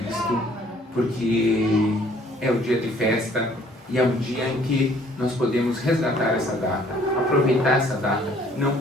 porque é o dia de festa e é um dia em que nós podemos resgatar essa data, aproveitar essa data, não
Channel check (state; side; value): normal; both; correlation 0.59